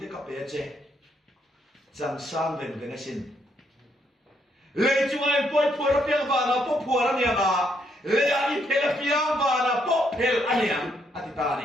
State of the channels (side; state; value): both; normal; correlation 0.74